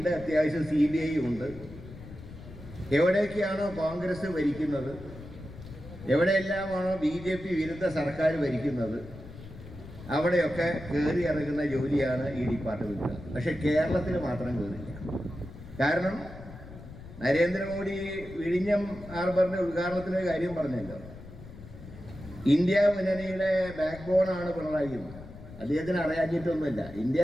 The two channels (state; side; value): noise; left; rumble, 15 dB below the sound